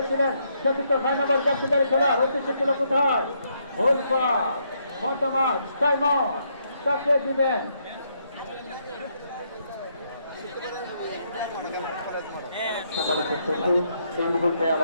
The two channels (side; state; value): both; inverted; correlation -0.75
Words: চতুর্থ 6 নম্বর জাতীয় খেলার উদ্দেশ্য ছিল কোথায় গোল পার মতামত সাইমন তাকে দিবেন। সম্মানিত সচিব এই মুহূর্তে